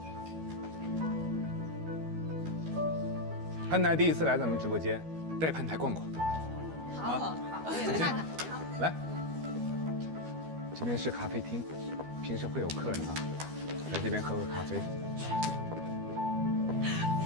潘台第一次来咱们直播间，带潘台逛逛。好。啊！我也看看。来，这边是咖啡厅，平时会有客人啊，来这边喝个咖啡。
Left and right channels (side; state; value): left; late; 12 ms